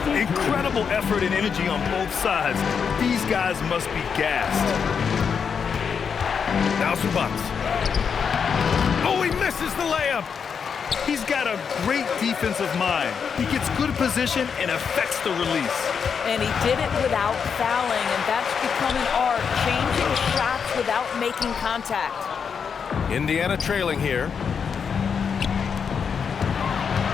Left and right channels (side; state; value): right; quieter; 6.5 dB